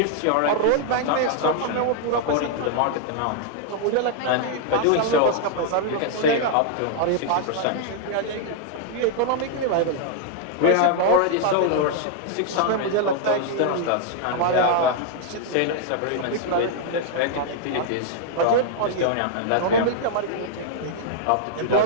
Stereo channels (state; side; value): different; both; correlation -0.01